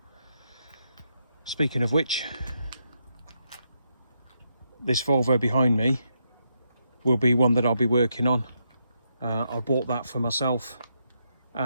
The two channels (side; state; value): both; inverted; correlation -0.80